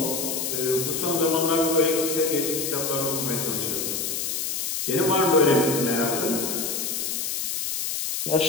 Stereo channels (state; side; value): noise; left; hiss, 2 dB below the sound